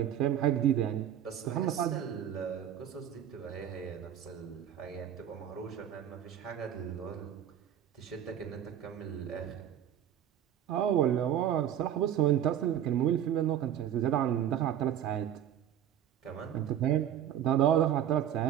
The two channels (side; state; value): left; quieter; 10.3 dB